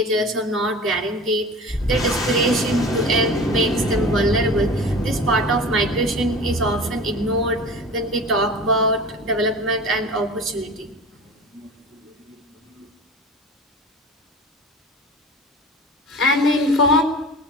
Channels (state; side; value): normal; both; correlation 0.36